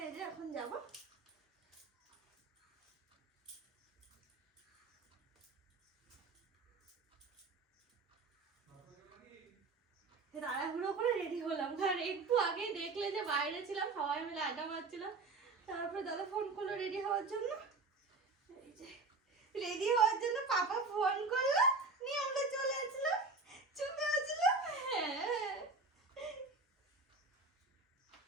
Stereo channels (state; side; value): quieter; left; 3.9 dB